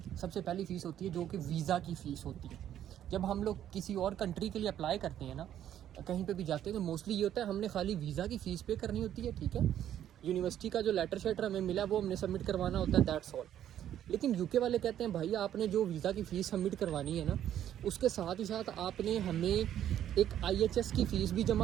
सबसे पहली फ़ीस होती है जो कि वीज़ा की फ़ीस होती है। जब हम लोग किसी और कंट्री के लिए अप्लाई करते हैं ना, कहीं पे भी जाते हैं तो मोस्टली ये होता है हमने खाली वीज़ा की फ़ीस पे करनी होती है, ठीक है। यूनिवर्सिटी का जो लेटर शेटर हमें मिला वो हमने सबमिट करवाना होता है, दैट्स ऑल। लेकिन यूके वाले कहते हैं भाई आपने जो वीज़ा की फ़ीस सबमिट करवानी है ना, उसके साथ ही साथ आपने हमें एक IHS की फ़ीस भी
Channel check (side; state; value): left; quieter; 10.9 dB